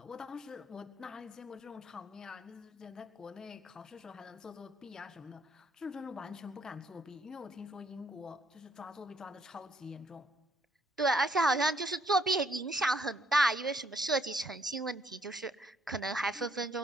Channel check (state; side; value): normal; both; correlation 0.68